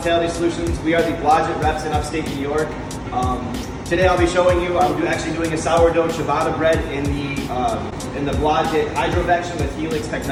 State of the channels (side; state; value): both; identical; correlation 1.00